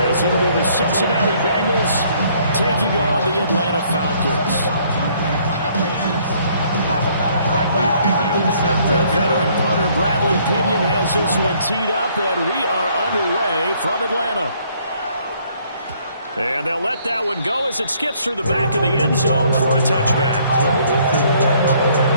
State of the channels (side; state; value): both; inverted; correlation -0.64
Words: it'll be the Cincinnati Bengals taking on the Atlanta Falcons. The veteran punter Bradley Pinion has this one teed up, and we are underway from Atlanta. And they'll let that one go as it skips through the back of the end zone for a touchback.